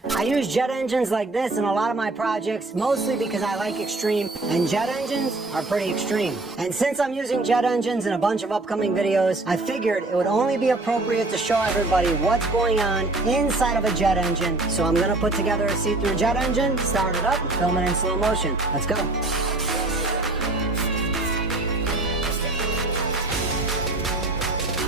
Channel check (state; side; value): quieter; left; 3.0 dB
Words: use jet engines like this in a lot of my projects, mostly because I like extreme, and jet engines are pretty extreme. And since I'm using jet engines in a bunch of upcoming videos, I figured it would only be appropriate to show everybody what's going on inside of a jet engine. So I'm gonna put together a see-through jet engine, start it up, and film it in slow motion. Let's go.